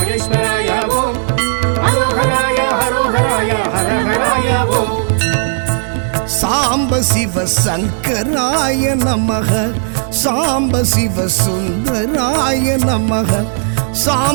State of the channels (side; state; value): left; silent; digital silence